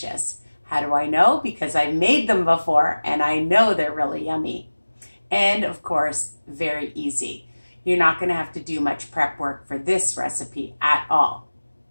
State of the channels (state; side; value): inverted; both; correlation -1.00